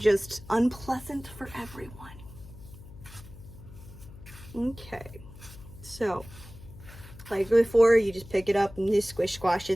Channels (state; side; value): noise; left; hum, 17 dB below the sound